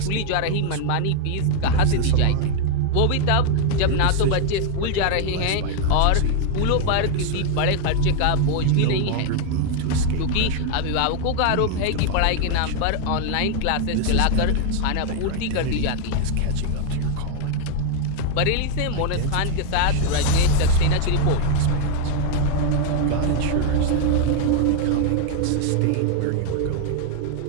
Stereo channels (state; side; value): different; both; correlation 0.00